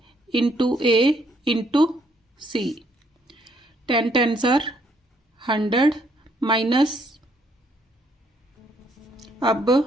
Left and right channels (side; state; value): both; normal; correlation 0.69